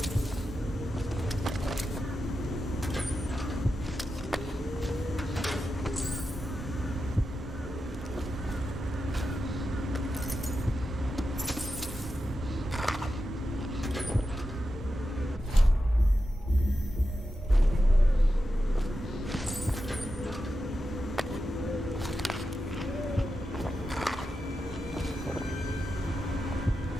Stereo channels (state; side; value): normal; both; correlation 0.90